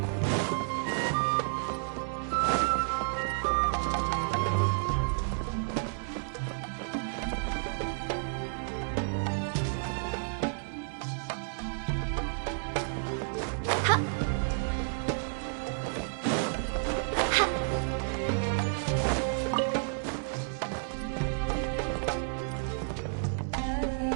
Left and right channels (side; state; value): left; silent; digital silence